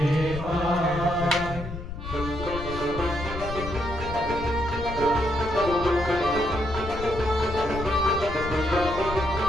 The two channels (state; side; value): noise; left; rumble, 9 dB below the sound